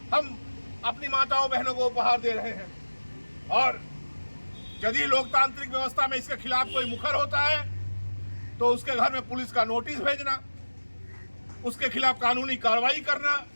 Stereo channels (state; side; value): inverted; both; correlation -1.00